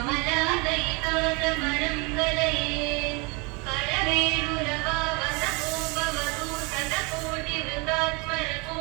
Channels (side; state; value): left; quieter; 29.2 dB